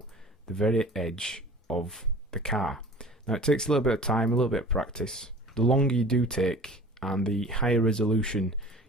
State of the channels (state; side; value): normal; both; correlation 0.43